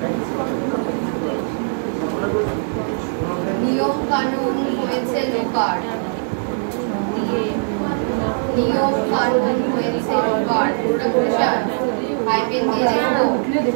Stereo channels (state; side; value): silent; left; 65 dB below the other